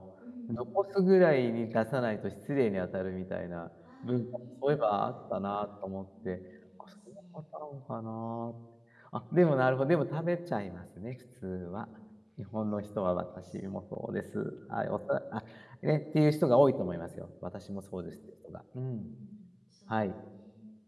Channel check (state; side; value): identical; both; correlation 1.00